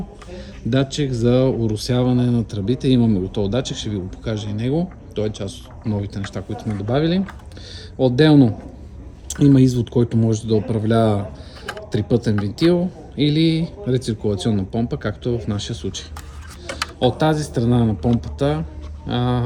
датчик за оросяване на тръбите. Имаме готов датчик, ще ви го покажа и него. Той е част от новите неща, които сме добавили. Отделно има извод, който може да управлява трипътен вентил или рециркулационна помпа, както е в нашия случай. От тази страна на помпата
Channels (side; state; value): both; identical; correlation 1.00